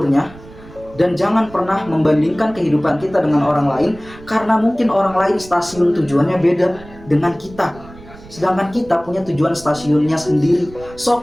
dan jangan pernah membandingkan kehidupan kita dengan orang lain, karena mungkin orang lain stasiun tujuannya beda dengan kita, sedangkan kita punya tujuan stasiunnya sendiri.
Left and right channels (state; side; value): noise; right; rumble, 20 dB below the sound